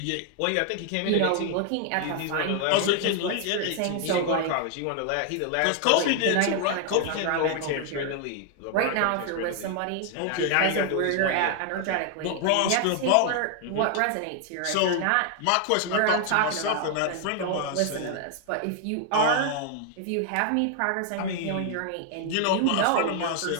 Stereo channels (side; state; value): both; different; correlation 0.00